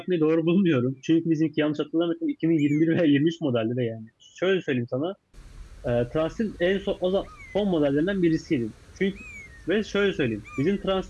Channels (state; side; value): identical; both; correlation 1.00